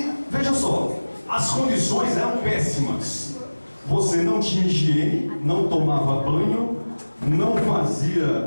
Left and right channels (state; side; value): inverted; both; correlation -1.00